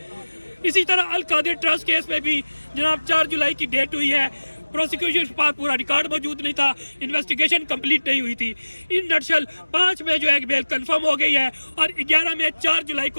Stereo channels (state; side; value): inverted; both; correlation -1.00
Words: इसी तरह अल कादिर ट्रस्ट केस में भी जनाब 4 जुलाई की डेट हुई है, प्रोसिक्यूशन के पास पूरा रिकॉर्ड मौजूद नहीं था, इन्वेस्टिगेशन कंप्लीट नहीं हुई थी। इन नटशल 5 में जो है बेल कंफर्म हो गई है और 11 में 4 जुलाई